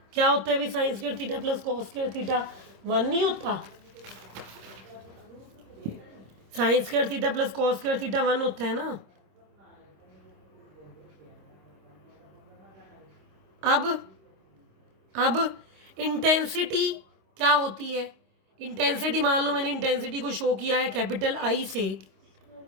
क्या होता है भाई, sine square theta plus cos square theta 1 नहीं होता, sine square theta plus cos square theta 1 होता है ना। अब इंटेंसिटी क्या होती है, इंटेंसिटी मान लो मैंने इंटेंसिटी को शो किया है कैपिटल आई से,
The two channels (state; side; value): late; left; 26 ms